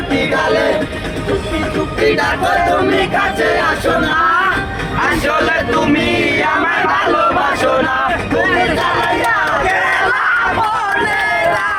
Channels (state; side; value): identical; both; correlation 1.00